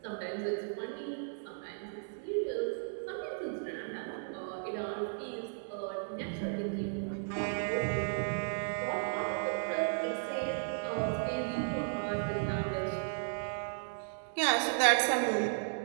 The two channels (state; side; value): silent; left; digital silence